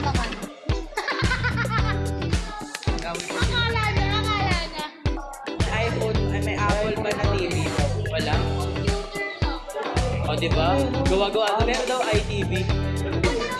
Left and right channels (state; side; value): identical; both; correlation 1.00